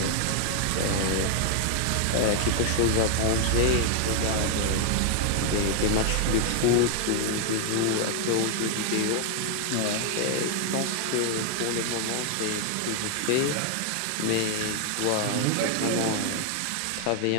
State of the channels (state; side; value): different; both; correlation 0.00